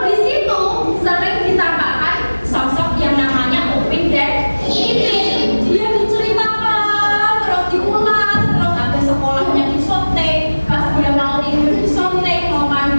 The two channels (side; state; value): both; inverted; correlation -1.00